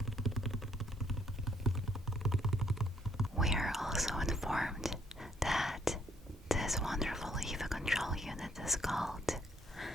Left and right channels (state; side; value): normal; both; correlation 0.67